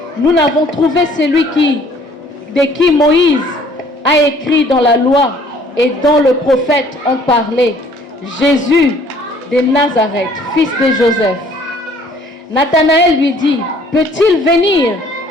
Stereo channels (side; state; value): both; normal; correlation 0.57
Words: nous n'avons trouvé celui de qui Moïse a écrit dans la loi et dont le prophète ont parlé, Jésus de Nazareth, fils de Joseph. Nathanaël lui dit: peut-il venir